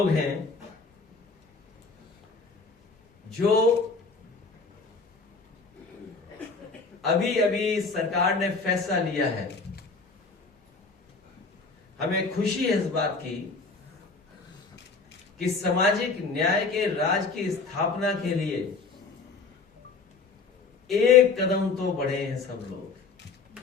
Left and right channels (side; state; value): right; quieter; 4.4 dB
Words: हैं जो अभी अभी सरकार ने फैसला लिया है। हमें खुशी है इस बात की कि सामाजिक न्याय के राज की स्थापना के लिए एक कदम तो बढ़े हैं सब लोग।